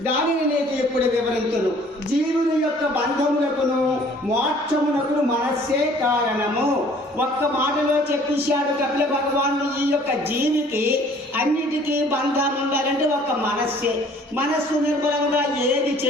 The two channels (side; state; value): both; normal; correlation 0.55